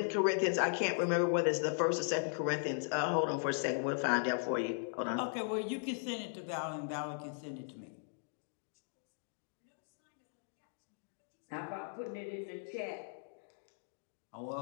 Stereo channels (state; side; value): silent; right; digital silence